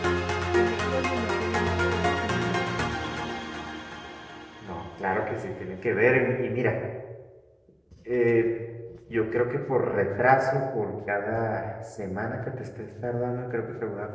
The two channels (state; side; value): identical; both; correlation 1.00